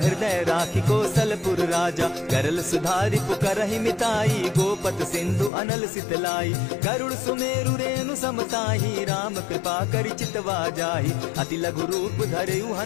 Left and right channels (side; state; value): right; drops out; at 5.5 s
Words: राखी कौशलपुर राजा। करल सुधारि पुकरहि मिताई, गोपत सिंधु अनल सितलाई। गरुड़ सुमेरु रेणु समताही, राम कृपा करि चितवा जाहि। अति लघु रूप धरयु